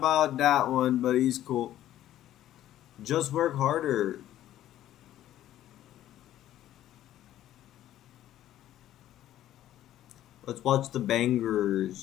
that one, but he's cool. Just work harder. Let's watch the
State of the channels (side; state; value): right; quieter; 12.8 dB